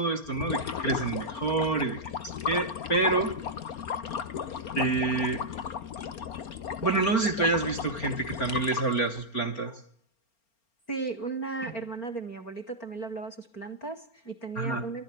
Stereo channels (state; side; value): late; right; 4.4 ms